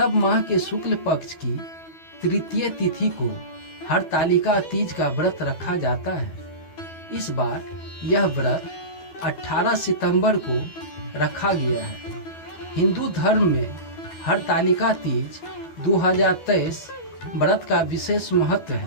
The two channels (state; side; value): late; right; 12 ms